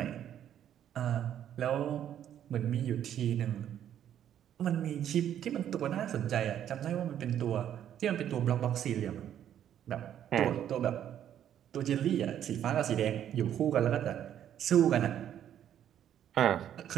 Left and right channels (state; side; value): quieter; left; 10.3 dB